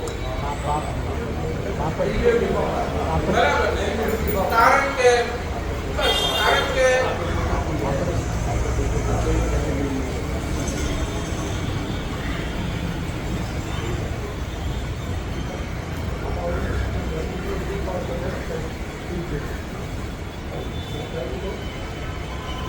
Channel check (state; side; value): identical; both; correlation 1.00